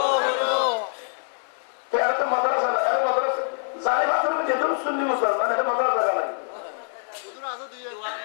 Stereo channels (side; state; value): right; silent; digital silence